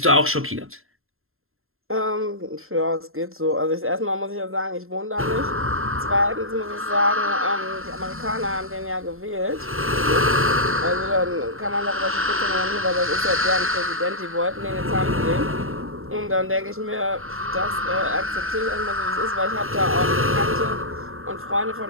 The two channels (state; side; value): late; left; 0.61 ms